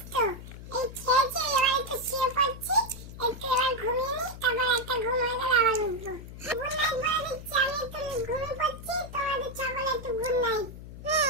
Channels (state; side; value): noise; left; hum, 13 dB below the sound